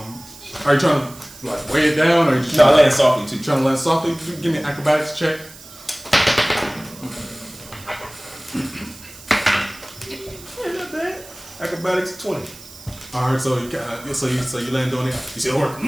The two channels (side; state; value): right; noise; hiss, 18 dB below the sound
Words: are you trying to like weigh it down, or are you just No, I land softly too. trying to land softly? Give me an acrobatics check. Acrobatics 20. Alright, so you land on it. You see the orc.